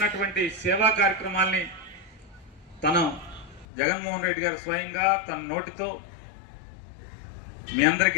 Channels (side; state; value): right; drops out; at 3.7 s